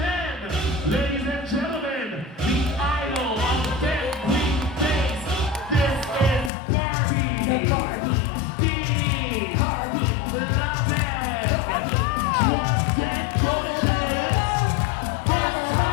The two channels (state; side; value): drops out; right; at 6.5 s